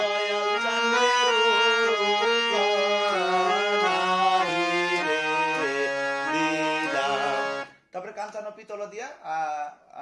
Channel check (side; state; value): both; identical; correlation 1.00